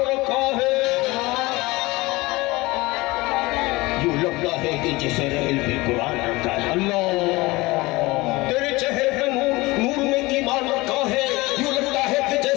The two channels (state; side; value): quieter; right; 21.7 dB